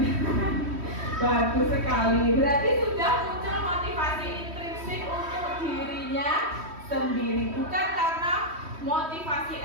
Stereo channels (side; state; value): left; late; 3.1 ms